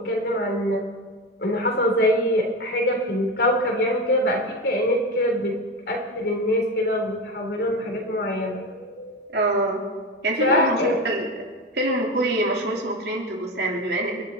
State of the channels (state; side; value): normal; both; correlation 0.22